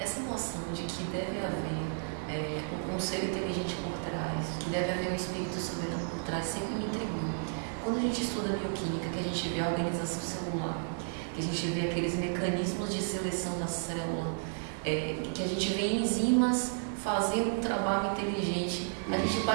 essa noção de que deve haver um ser inteligente por trás, que deve haver um espírito soberano por trás, sempre me intrigou. Quando a gente estuda bioquímica, que a gente vê a organização celular, que a gente vê aqueles mecanismos de seleção da célula, que a gente vê enzimas fazendo um trabalho inteligente, a gente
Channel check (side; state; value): left; silent; 56 dB below the other